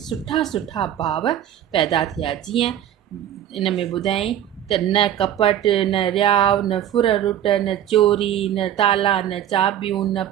सुठा भाव पैदा थिया। जीअं इन में ॿुधाई त न कपट, न रियाव, न फुररुट, न चोरी, न ताला, न चाबियूं, न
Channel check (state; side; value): quieter; left; 10.9 dB